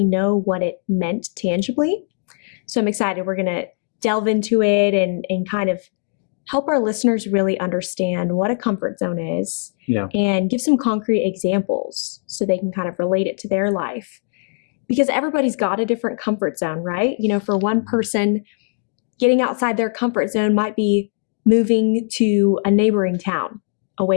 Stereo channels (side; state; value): right; silent; 57 dB below the other